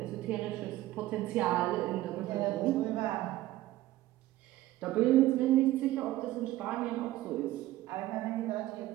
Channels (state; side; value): quieter; left; 15.7 dB